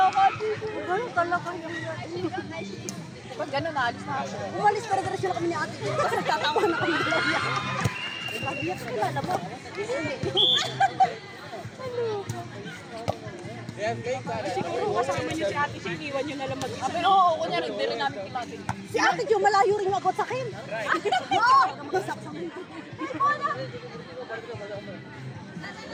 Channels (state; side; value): identical; both; correlation 1.00